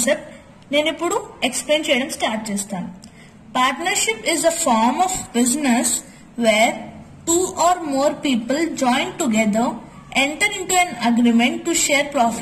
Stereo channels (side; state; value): both; identical; correlation 1.00